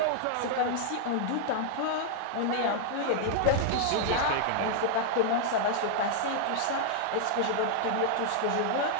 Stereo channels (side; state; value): both; different; correlation -0.01